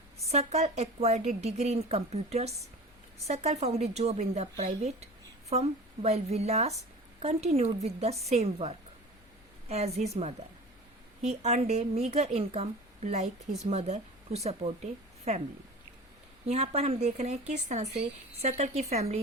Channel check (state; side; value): noise; left; rumble, 27 dB below the sound